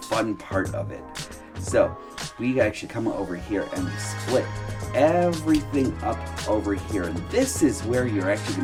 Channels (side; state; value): both; identical; correlation 1.00